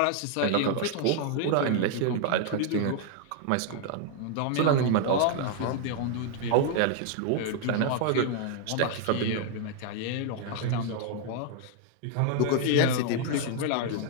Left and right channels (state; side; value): different; both; correlation 0.00